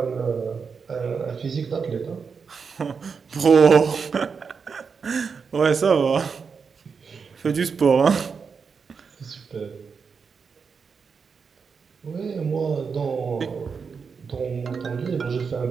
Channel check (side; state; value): left; quieter; 5.7 dB